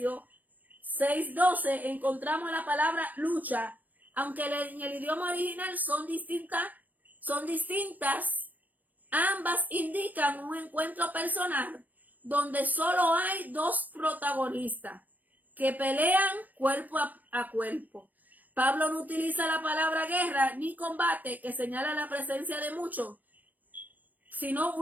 6:12 encontramos la palabra lucha, aunque en el idioma original son distintas, ambas indican un encuentro personal donde solo hay dos protagonistas que pelean cuerpo a cuerpo. Pablo no utiliza la palabra guerra ni combate, que señala la presencia de muchos, sino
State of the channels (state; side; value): late; left; 0.084 ms